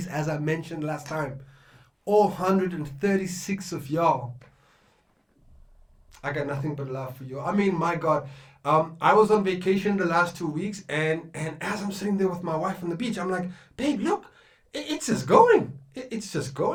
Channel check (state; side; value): identical; both; correlation 1.00